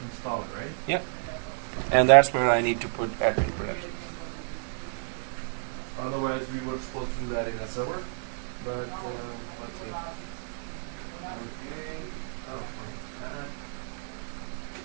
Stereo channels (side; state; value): left; silent; digital silence